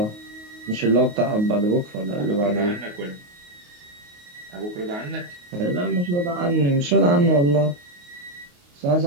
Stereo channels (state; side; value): late; left; 28 ms